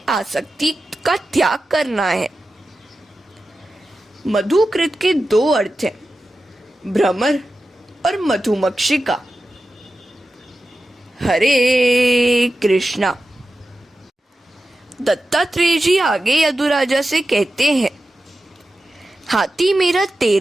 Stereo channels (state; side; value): normal; both; correlation 0.92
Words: का त्याग करना है। मधुकृत के दो अर्थ हैं, भ्रमर और मधुमक्षिका। हरे कृष्णा। दत्तात्रेय जी आगे यदुराजा से कहते हैं, हाथी मेरा